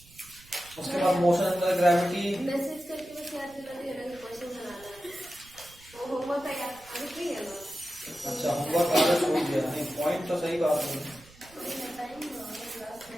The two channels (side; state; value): right; noise; rumble, 24 dB below the sound